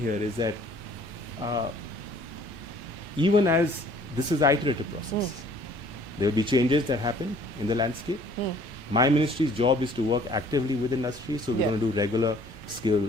here is that even as this is an iterative process, there will be changes that happen in the landscape. My ministry's job is to work actively with industry, so we're going to do regular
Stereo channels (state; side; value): normal; both; correlation 0.56